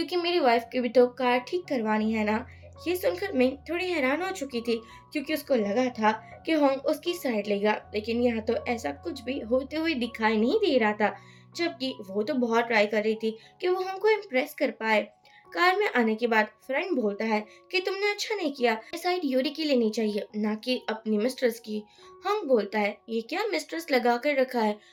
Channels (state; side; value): identical; both; correlation 1.00